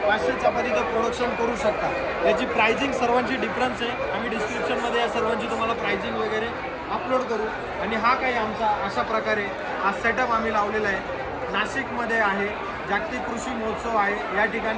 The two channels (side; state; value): both; identical; correlation 1.00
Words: 500 चपातीचं प्रोडक्शन करू शकता. याची प्राइसिंग सर्वांची डिफरन्स आहे. आम्ही डिस्क्रिप्शनमध्ये या सर्वांची तुम्हाला प्राइसिंग वगैरे अपलोड करू. आणि हा काही आमचा अशा प्रकारे हा सेटअप आम्ही लावलेला आहे. नाशिकमध्ये आहे, जागतिक कृषी महोत्सव आहे, या